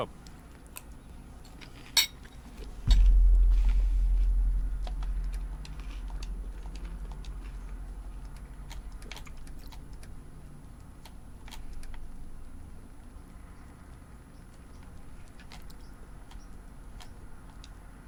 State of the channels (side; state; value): both; identical; correlation 1.00